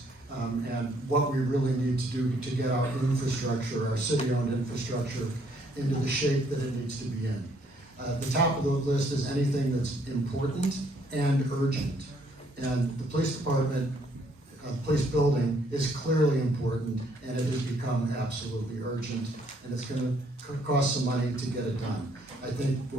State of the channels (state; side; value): normal; both; correlation 0.67